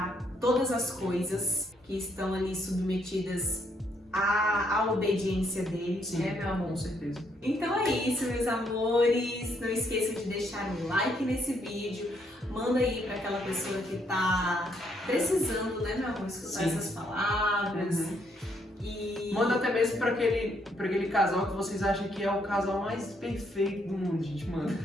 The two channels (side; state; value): both; normal; correlation 0.72